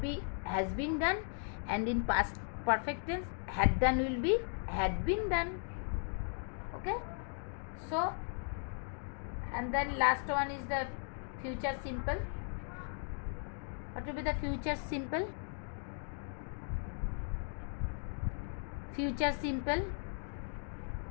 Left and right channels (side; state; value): right; silent; 53 dB below the other